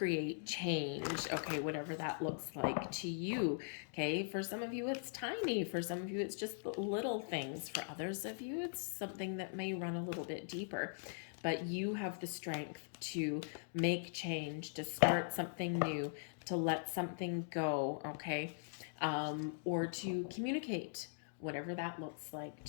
change, okay, whatever that looks like to you. Okay, for some of you, it's tiny. For some of you, it's just little things. For others of you, it's something that may run a little bit deeper. But you have the strength to make change, to start something new, to let something go, okay? Or to communicate, whatever that looks like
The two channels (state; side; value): silent; right; digital silence